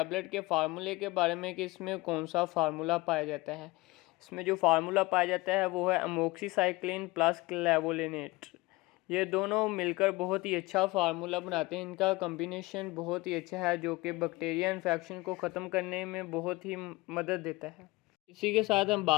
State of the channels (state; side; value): quieter; right; 21.9 dB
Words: के फार्मूले के बारे में कि इसमें कौन सा फार्मूला पाया जाता है। इसमें जो फार्मूला पाया जाता है वो है अमोक्सिसाइक्लिन प्लस क्लेवोलिनेट। ये दोनों मिलकर बहुत ही अच्छा फार्मूला बनाते हैं। इनका कॉम्बिनेशन बहुत ही अच्छा है जो कि बैक्टीरिया इन्फेक्शन को ख़त्म करने में बहुत ही मदद देता है। इसी के साथ हम